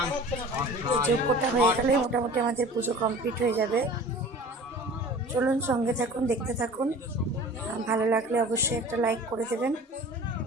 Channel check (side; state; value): both; normal; correlation 0.42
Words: এই যজ্ঞটা হয়ে গেলেই মোটামুটি আমাদের পুজো কমপ্লিট হয়ে যাবে। চলুন সঙ্গে থাকুন, দেখতে থাকুন। ভালো লাগলে অবশ্যই একটা লাইক করে দেবেন,